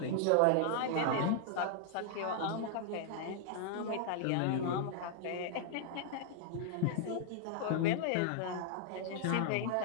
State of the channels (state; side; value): different; both; correlation -0.01